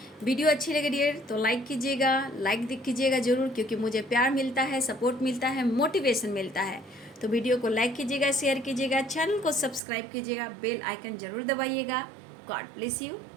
वीडियो अच्छी लगे डियर तो लाइक कीजिएगा, लाइक कीजिएगा ज़रूर, क्योंकि मुझे प्यार मिलता है, सपोर्ट मिलता है, मोटिवेशन मिलता है। तो वीडियो को लाइक कीजिएगा, शेयर कीजिएगा, चैनल को सब्सक्राइब कीजिएगा, बेल आइकन ज़रूर दबाइएगा। God bless you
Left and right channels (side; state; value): left; drops out; at 9.8 s